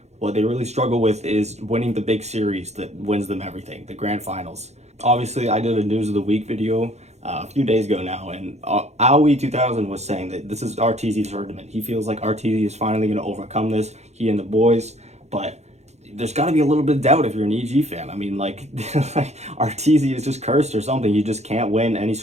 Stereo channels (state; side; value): late; left; 0.32 ms